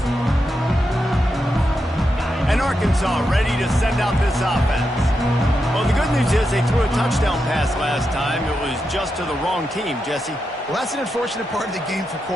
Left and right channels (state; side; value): normal; both; correlation 0.86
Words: And Arkansas ready to send out this offense. Well, the good news is they threw a touchdown pass last time. It was just to the wrong team, Jesse. Well, that's an unfortunate part of the game for